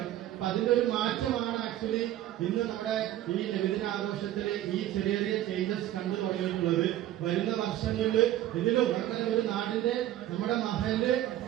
അപ്പൊ അതിന്റെ ഒരു മാറ്റമാണ് ആക്ച്വലി ഇന്ന് നമ്മുടെ ഈ നബിദിനാഘോഷത്തിൽ ഈ ചെറിയ ചേഞ്ചസ് കണ്ടു തുടങ്ങിയിട്ടുള്ളത്. വരുന്ന വർഷങ്ങളിൽ ഇതിലും അങ്ങനെ ഒരു നാടിന്റെ നമ്മുടെ മഹല്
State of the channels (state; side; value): quieter; left; 13.3 dB